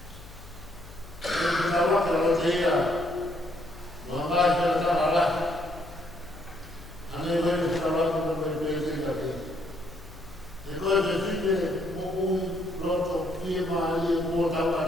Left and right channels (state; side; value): noise; left; hum, 17 dB below the sound